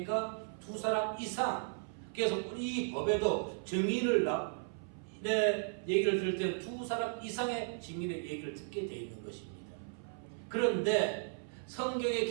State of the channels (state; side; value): silent; left; 54 dB below the other